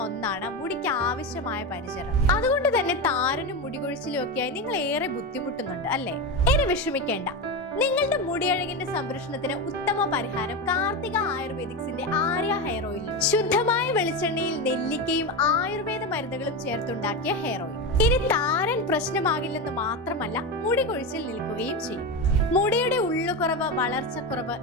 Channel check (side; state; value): both; normal; correlation 0.17